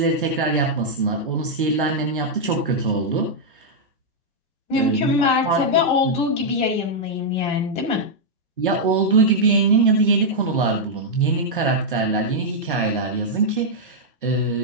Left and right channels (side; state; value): both; normal; correlation -0.05